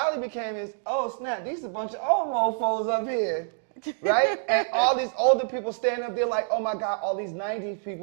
became is, oh, snap, these a bunch of old mofos up here, right? And all these older people standing up there like, oh, my God, all these 90s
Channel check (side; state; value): left; silent; digital silence